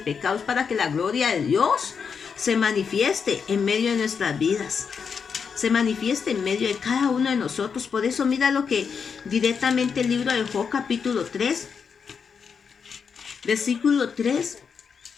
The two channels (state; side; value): quieter; right; 6.2 dB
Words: pecado, es para que la gloria de Dios se manifieste en medio de nuestras vidas. Se manifieste en medio de cada uno de nosotros. Por eso mira lo que directamente el libro de Job capítulo 3, versículo 3.